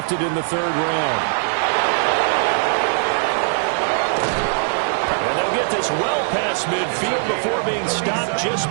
in the 3rd round. And they'll get this well past midfield before being stopped just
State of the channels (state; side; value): silent; left; 66 dB below the other